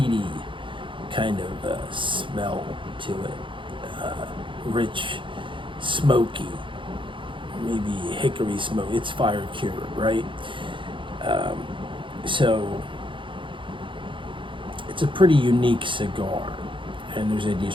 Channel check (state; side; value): late; left; 0.24 ms